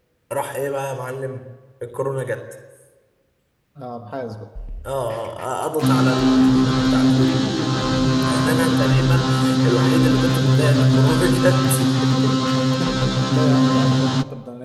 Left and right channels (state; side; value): identical; both; correlation 1.00